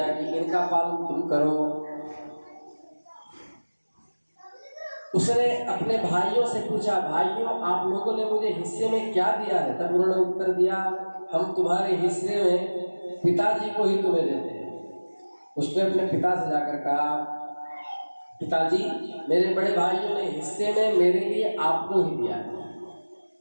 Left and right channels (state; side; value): inverted; both; correlation -1.00